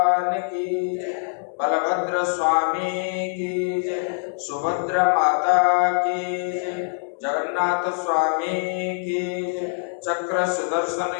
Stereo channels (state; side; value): silent; right; digital silence